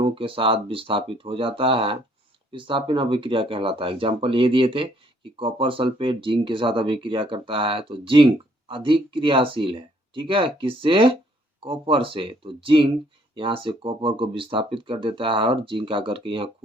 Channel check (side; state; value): both; normal; correlation 0.65